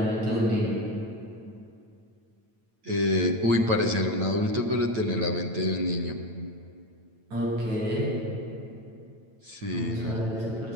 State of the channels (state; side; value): late; left; 9.0 ms